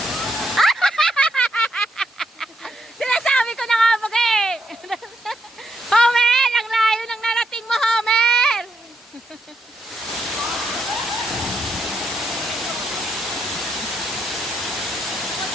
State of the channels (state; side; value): normal; both; correlation 0.79